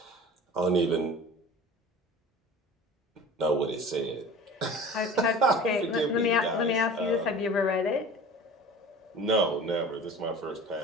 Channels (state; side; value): normal; both; correlation 0.40